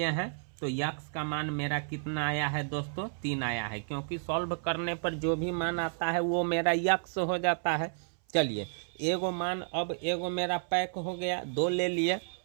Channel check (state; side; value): silent; left; 57 dB below the other